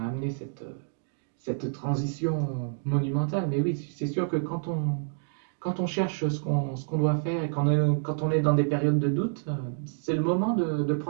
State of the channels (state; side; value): silent; left; digital silence